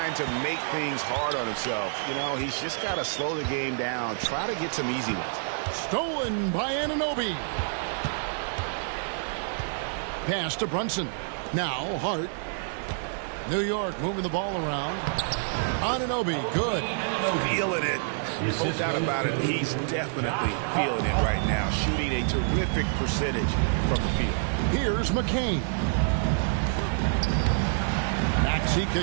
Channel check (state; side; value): silent; left; 60 dB below the other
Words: to make things hard on himself. You know, he's just got to slow the game down, try to get some easy ones. Stolen by Anunoby. Pass to Brunson. Now Hart. New York moving the ball around. Anunoby, good. Feeling it. No doubt about it. He's definitely feeling it right now. Shooting a terrific percentage from the field. Here's McCain. Maxey